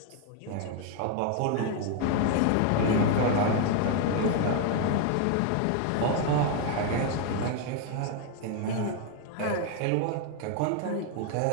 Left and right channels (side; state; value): both; different; correlation 0.01